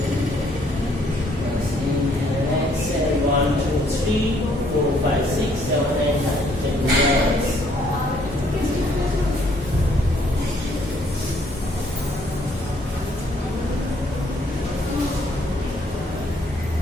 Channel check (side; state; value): both; normal; correlation 0.66